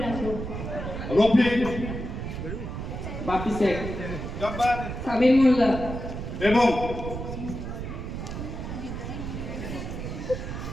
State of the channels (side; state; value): right; noise; rumble, 6 dB below the sound